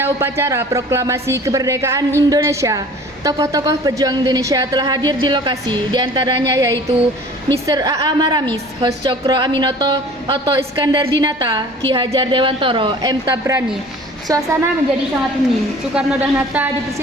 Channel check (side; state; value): both; normal; correlation 0.46